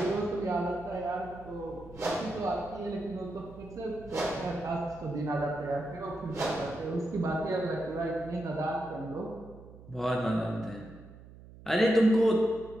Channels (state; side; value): noise; right; hum, 18 dB below the sound